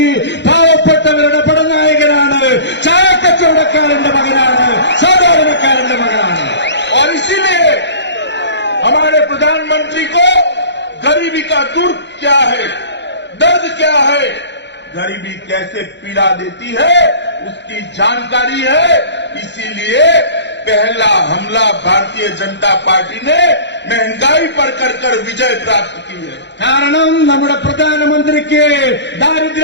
പാവപ്പെട്ടവരുടെ പടനായകനാണ്, ചായക്കച്ചവടക്കാരന്റെ മകനാണ്, സാധാരണക്കാരന്റെ മകനാണ്. और इसीलिए हमारे प्रधानमंत्री को गरीबी का दुर्ग क्या है, दर्द क्या है, गरीबी कैसे पीड़ा देती है, उसकी जानकारी है। इसीलिए पहला हमला भारतीय जनता पार्टी ने महंगाई पर कर विजय प्राप्त की है। കാരണം നമ്മുടെ പ്രധാനമന്ത്രിക്ക്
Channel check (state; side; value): late; right; 0.52 ms